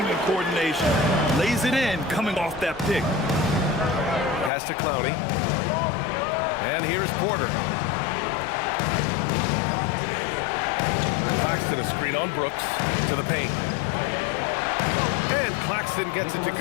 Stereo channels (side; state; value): right; drops out; at 4.5 s